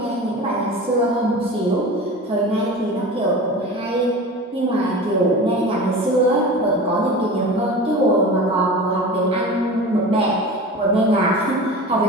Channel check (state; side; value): normal; both; correlation 0.34